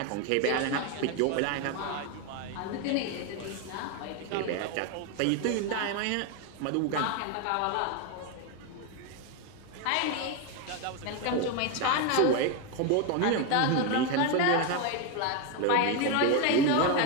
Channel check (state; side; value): different; both; correlation 0.02